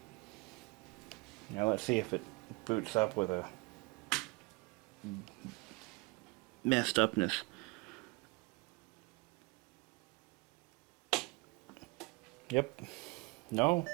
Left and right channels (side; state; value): left; quieter; 26.7 dB